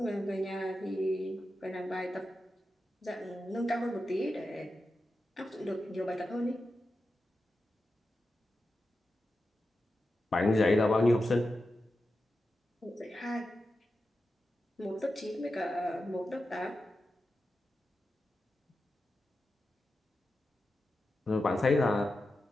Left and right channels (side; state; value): both; normal; correlation 0.91